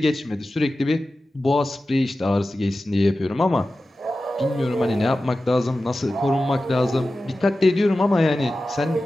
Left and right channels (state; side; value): normal; both; correlation 0.94